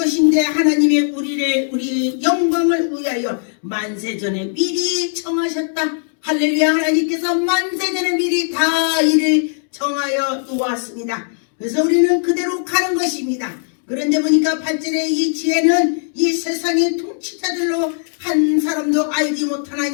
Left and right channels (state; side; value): silent; right; digital silence